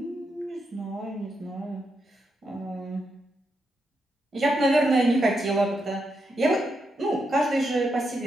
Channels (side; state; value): both; normal; correlation 0.83